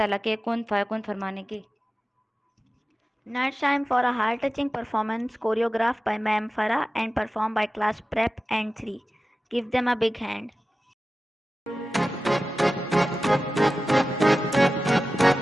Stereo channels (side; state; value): both; normal; correlation 0.94